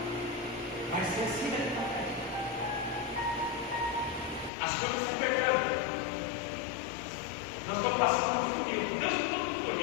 vai ser assim, né? As coisas estão apertando. Nós estamos passando por um funil. Deus não está tudo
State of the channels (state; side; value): drops out; right; at 4.5 s